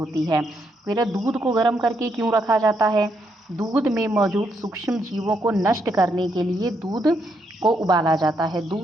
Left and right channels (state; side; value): normal; both; correlation 0.77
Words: है। फिर दूध को गर्म करके क्यों रखा जाता है? दूध में मौजूद सूक्ष्म जीवों को नष्ट करने के लिए दूध को उबाला जाता है।